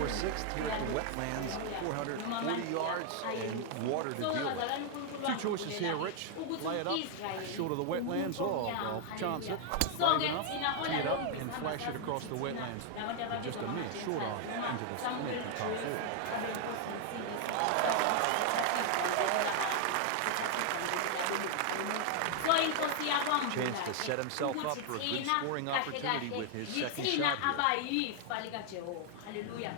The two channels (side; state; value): both; different; correlation 0.00